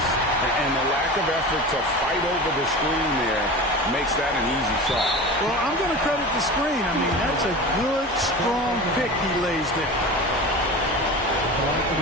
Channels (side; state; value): both; normal; correlation 0.31